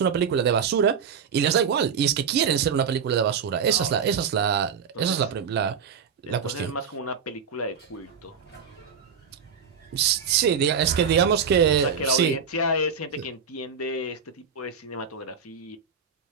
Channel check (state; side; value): quieter; left; 6.5 dB